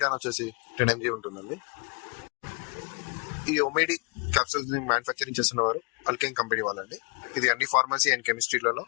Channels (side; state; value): right; quieter; 34.9 dB